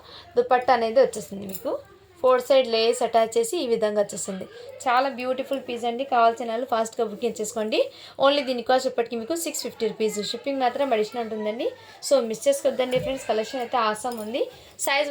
దుపట్టా అనేది వచ్చేస్తుంది మీకు. 4 సైడ్ లేస్ అటాచ్ చేసి ఈ విధంగా వచ్చేస్తుంది. చాలా బ్యూటిఫుల్ పీస్ అండి. కావాల్సిన వాళ్ళు ఫాస్ట్గా బుకింగ్ చేసుకోండి. ఓన్లీ దీని కాస్ట్ ఇప్పటికి మీకు 650 రూపీస్. షిప్పింగ్ మాత్రం అడిషనల్ ఉంటుందండి. సో మిస్ చేసుకోవద్దండి ఫ్రెండ్స్, కలెక్షన్ అయితే ఆసమ్ ఉంది. సైజ్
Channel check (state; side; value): identical; both; correlation 1.00